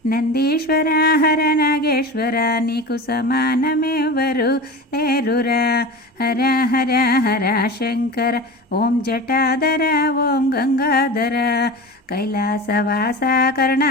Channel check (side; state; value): both; normal; correlation 0.30